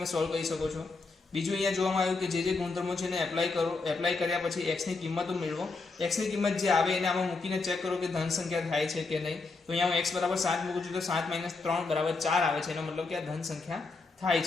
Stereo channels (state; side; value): quieter; right; 3.9 dB